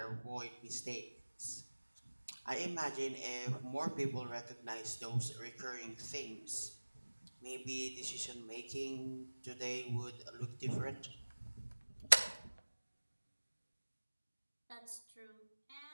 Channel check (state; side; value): inverted; both; correlation -1.00